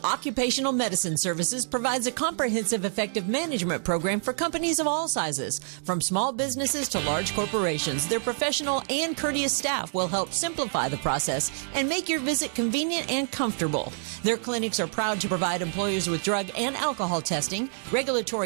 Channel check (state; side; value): silent; left; digital silence